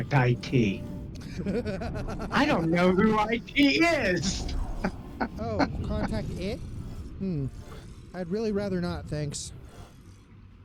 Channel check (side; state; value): both; identical; correlation 1.00